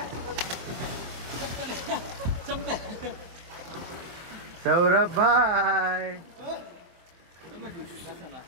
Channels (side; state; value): left; late; 24 ms